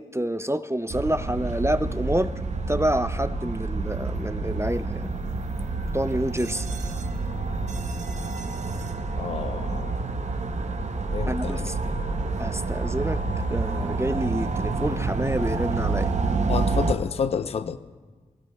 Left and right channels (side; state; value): both; normal; correlation 0.76